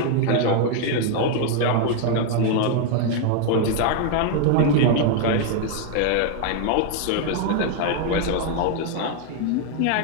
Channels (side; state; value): both; different; correlation 0.01